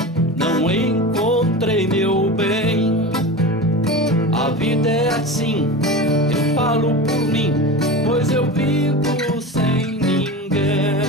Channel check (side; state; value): both; normal; correlation 0.28